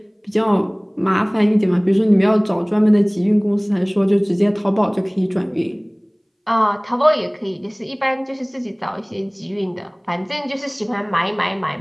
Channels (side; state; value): both; identical; correlation 1.00